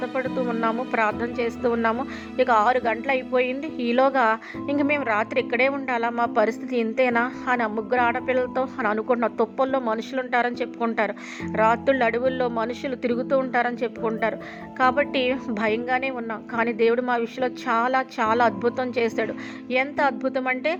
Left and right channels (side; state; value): both; identical; correlation 1.00